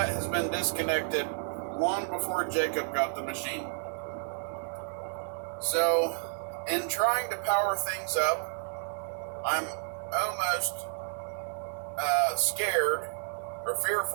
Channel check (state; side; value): silent; left; 57 dB below the other